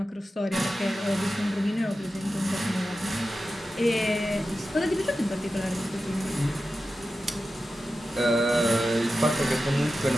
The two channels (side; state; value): both; normal; correlation 0.92